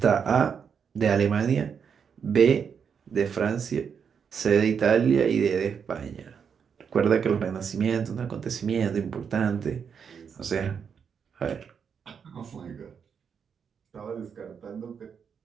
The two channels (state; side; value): quieter; left; 6.9 dB